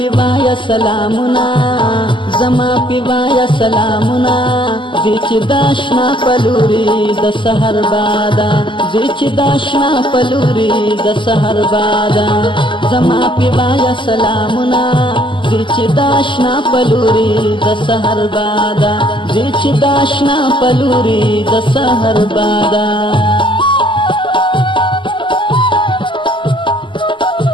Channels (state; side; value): late; right; 0.24 ms